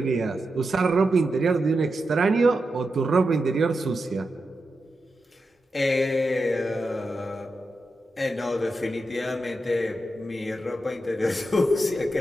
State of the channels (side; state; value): both; normal; correlation 0.89